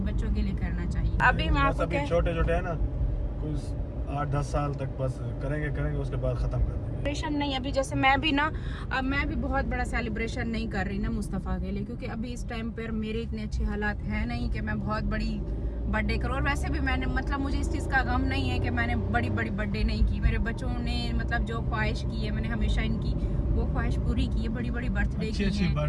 बच्चों के लिए करना चाहिए। अभी मैं आपको छोटे छोटे है ना, कुछ 8-10 साल तक बस करेंगे, उसके बाद खत्म कर देंगे। सेलिब्रेशन नहीं, अभी जैसे मैं भी ना, अब मैं भी बहुत बड़ा सेलिब्रेशन नहीं कर रही ना मुस्तफ़ा के लिए, क्योंकि अभी इस टाइम पर मेरे इतने अच्छे हालात हैं नहीं कि मैं बहुत बड़ी बर्थडे करूँ। और वैसे भी मैंने, मतलब मुझे इस चीज़ का गम नहीं है कि मैंने बड़ी बड़ी बर्थडे नहीं की। मेरे बच्चों ने मतलब जो ख्वाहिश की है, मैंने हमेशा इनकी वो ख्वाहिश पूरी की है। बड़ी बड़ी बर्थडे की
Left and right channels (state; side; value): identical; both; correlation 1.00